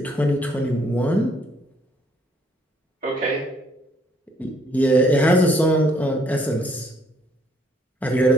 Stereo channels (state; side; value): normal; both; correlation 0.67